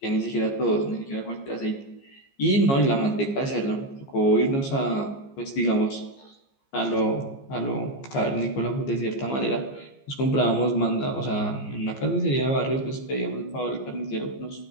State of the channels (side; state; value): right; late; 15 ms